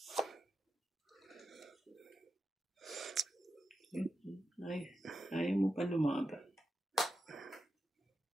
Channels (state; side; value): normal; both; correlation 0.88